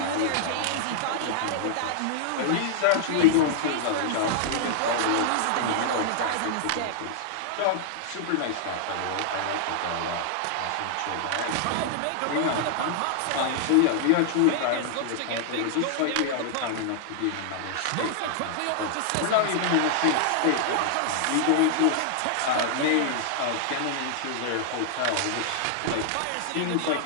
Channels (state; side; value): different; both; correlation -0.01